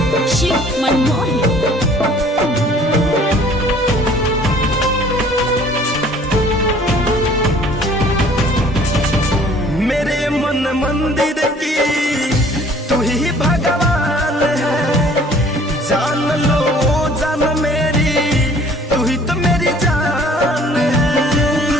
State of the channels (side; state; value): both; normal; correlation 0.54